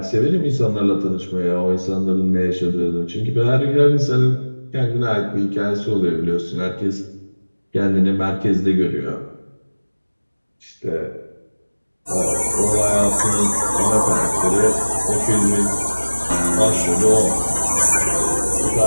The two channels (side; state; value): both; inverted; correlation -1.00